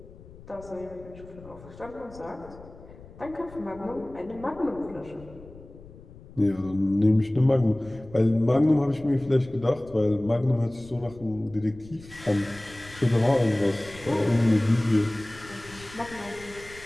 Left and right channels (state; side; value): noise; left; rumble, 19 dB below the sound